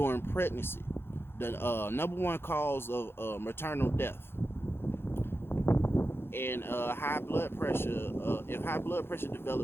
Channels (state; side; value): late; right; 0.11 ms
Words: pregnancy, the number one cause of maternal death. And high blood pressure, if high blood pressure